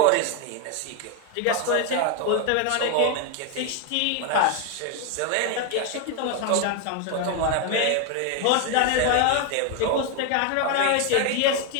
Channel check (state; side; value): different; both; correlation 0.01